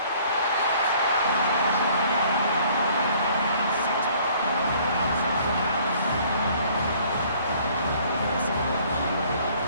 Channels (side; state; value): both; inverted; correlation -0.57